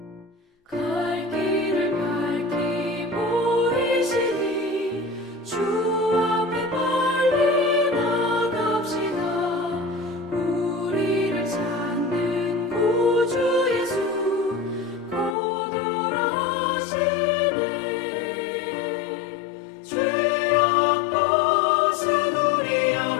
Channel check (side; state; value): right; drops out; at 15.4 s